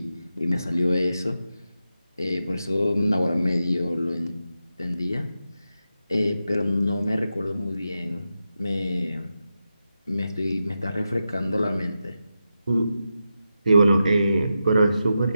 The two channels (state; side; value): inverted; both; correlation -0.89